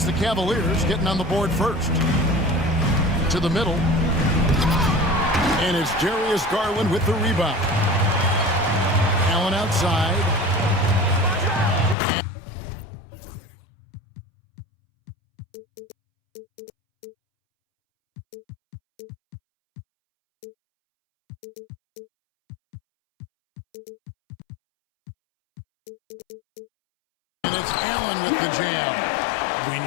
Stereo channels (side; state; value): right; drops out; at 12.0 s